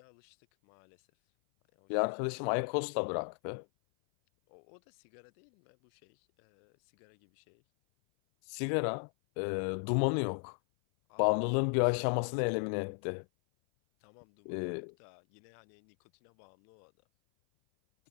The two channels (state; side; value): silent; right; 55 dB below the other